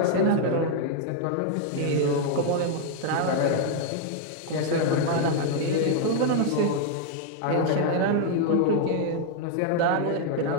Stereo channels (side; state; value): both; different; correlation 0.00